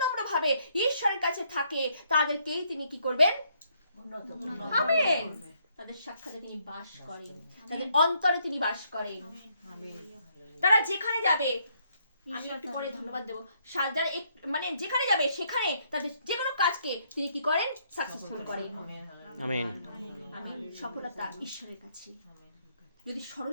নম্র ভাবে ঈশ্বরের কাছে থাকে, তাদেরকেই তিনি কি করবেন? আমেন। তাদের সাক্ষাতে তিনি বাস করেন, তাদের অন্তরে তিনি বাস করেন। তারা যেখানে যাবে, আমি একটু পরে ধন্যবাদ দেবো, যারা মানে যেখানে যাবে সেখানে তাদের যে কোনো কাজকে তিনি কি করেন? সাকসেসফুল করেন। আমেন। সফলতা ঈশ্বরের কাছে। যদি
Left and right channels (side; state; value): both; inverted; correlation -0.71